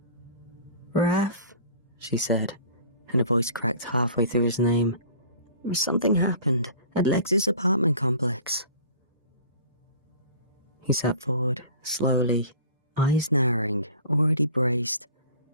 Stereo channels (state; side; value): inverted; both; correlation -0.44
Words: "Raf," she said, and a voice cracked halfway through his name. "Something happened at Lex's apartment complex." He sat forward, slowly, eyes narrowing, already braced.